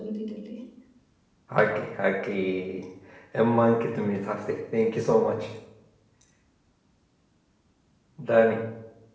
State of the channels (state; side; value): identical; both; correlation 1.00